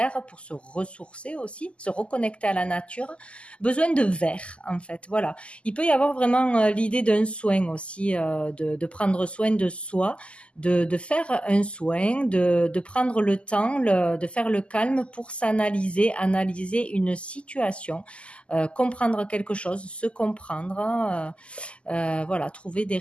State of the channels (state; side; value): late; right; 0.055 ms